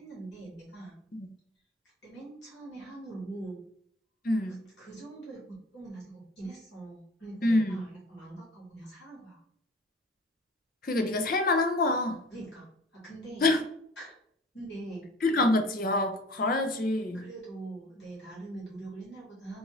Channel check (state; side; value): normal; both; correlation 0.46